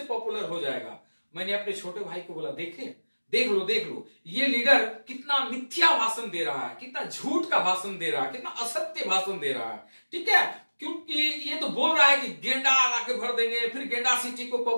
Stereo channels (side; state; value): both; inverted; correlation -1.00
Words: पॉपुलर हो जाएगा। मैंने अपने छोटे भाई को बोला देख लो ये लीडर कितना मिथ्या भाषण दे रहा है, कितना झूठ का भाषण दे रहा है, कितना असत्य भाषण दे रहा है। ठीक है, क्योंकि ये तो बोल रहा है कि गेंडा लाके भर देंगे, फिर गेंडा सिटी को